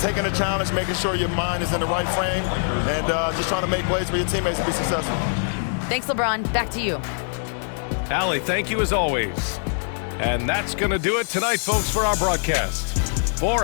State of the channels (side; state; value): right; silent; digital silence